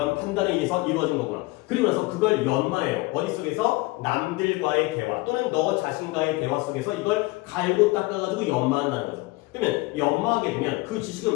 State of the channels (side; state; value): right; quieter; 22.3 dB